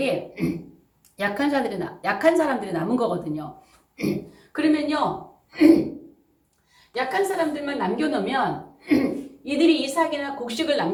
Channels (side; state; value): both; identical; correlation 1.00